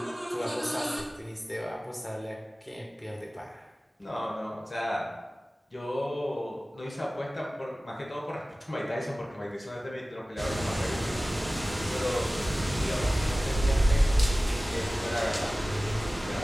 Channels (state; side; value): normal; both; correlation 0.97